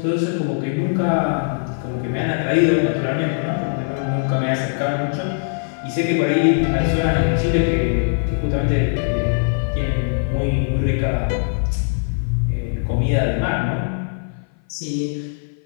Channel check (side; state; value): right; silent; 57 dB below the other